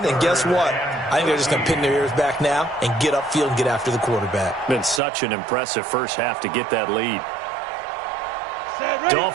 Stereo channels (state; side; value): drops out; left; at 5.0 s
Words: and guess what? I think they're just going to pin their ears back now and get upfield and get after the quarterback. Been such an impressive first half to get that lead.